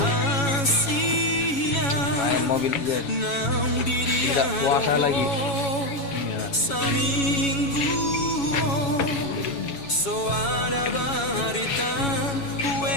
Main Mobile Legend. Tidak puasa lagi. Iya.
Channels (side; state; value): right; late; 7.2 ms